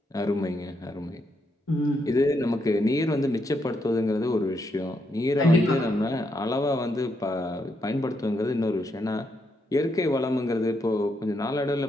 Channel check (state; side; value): normal; both; correlation 0.78